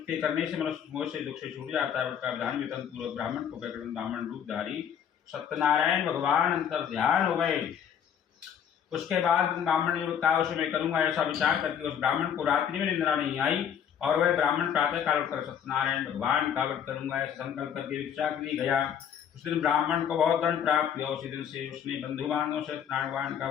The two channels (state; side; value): quieter; right; 8.5 dB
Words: के करने से मनुष्य मोह से दुख से छूट जाता है। व्रत का विधान वेतन पूर्वक ब्राह्मण को कहकर ब्राह्मण रूपधारी सत्यनारायण भगवान अंतर ध्यान हो गए। उसके बाद ब्राह्मण ने कहा उसे मैं करूंगा। ऐसा विचार करके उस ब्राह्मण को रात्रि में निद्रा नहीं आई और वह ब्राह्मण प्रातः काल उठकर सत्यनारायण भगवान का व्रत करूंगा ऐसा संकल्प करके भिक्षा के लिए गया। उस दिन ब्राह्मण को बहुत दंड प्राप्त हुआ। उसी दिन से उसने बंधु बांधवों से सत्यनारायण भगवान का